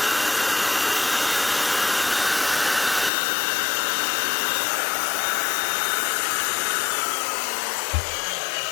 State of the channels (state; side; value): drops out; right; at 3.1 s